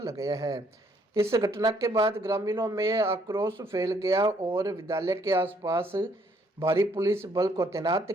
है। इस घटना के बाद ग्रामीणों में आक्रोश फैल गया और विद्यालय के आसपास भारी पुलिस बल को तैनात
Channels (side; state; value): both; normal; correlation 0.67